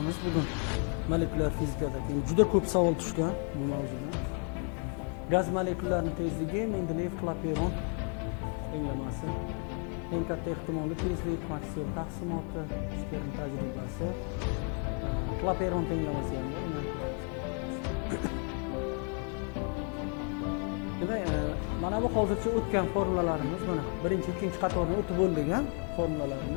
bugun. Molekulyar fizikada juda ko'p savol tushgan bu mavzuda. Gaz molekullarining tezligi Mendeleyev Klaperon tenglamasi. Eng katta ehtimolli tezlik Maxwell taqsimoti, Stern tajribasi. Klaperon tenglamasi. Mana bu hozircha o'tgan formulalarimiz, mana birinchi, ikkinchi qatorni o'tib bo'lgan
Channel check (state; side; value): quieter; right; 39.8 dB